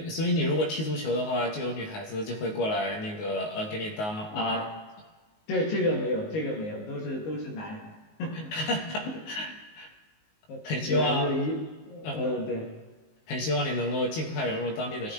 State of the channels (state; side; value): late; right; 19 ms